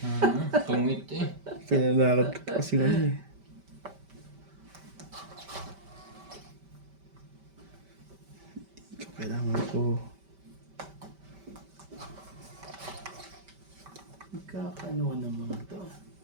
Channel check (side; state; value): left; late; 5.1 ms